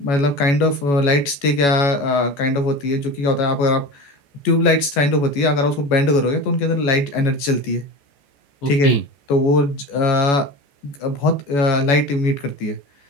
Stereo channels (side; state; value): right; late; 14 ms